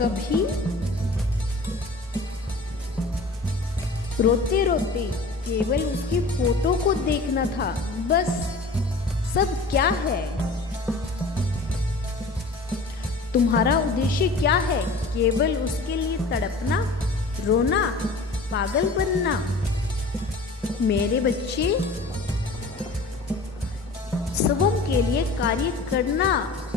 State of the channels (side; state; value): right; quieter; 3.4 dB